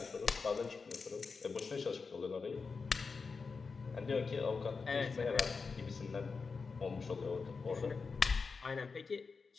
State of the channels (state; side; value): quieter; right; 4.8 dB